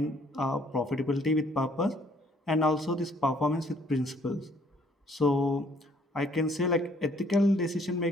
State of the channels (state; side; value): normal; both; correlation 0.63